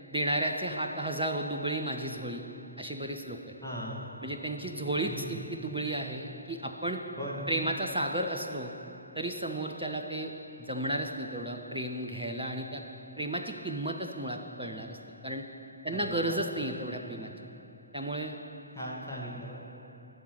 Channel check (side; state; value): both; inverted; correlation -0.37